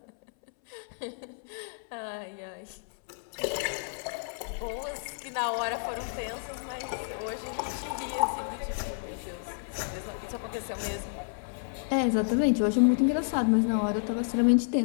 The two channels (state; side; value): silent; right; 57 dB below the other